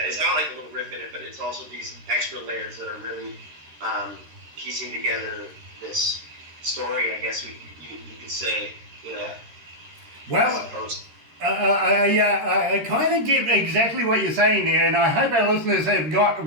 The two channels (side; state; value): left; late; 13 ms